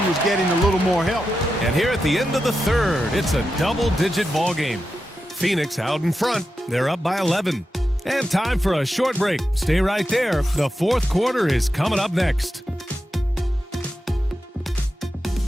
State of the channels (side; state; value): both; normal; correlation 0.89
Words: was getting a little more help. And here at the end of the third, it's a double-digit ball game. Phoenix out in front. They're up by 11. And time for a short break. Stay right there. The fourth quarter is coming up next.